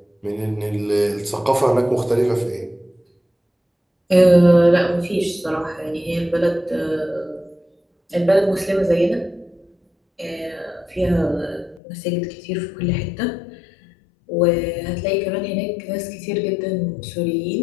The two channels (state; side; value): drops out; right; at 11.8 s